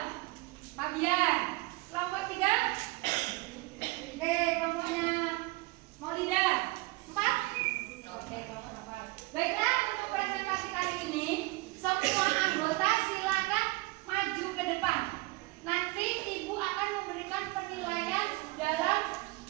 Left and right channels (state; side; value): quieter; left; 23.7 dB